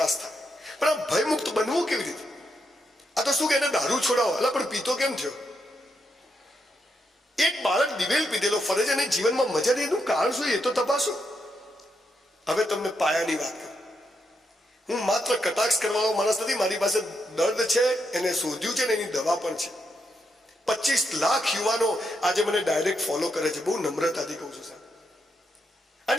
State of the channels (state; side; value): normal; both; correlation 0.81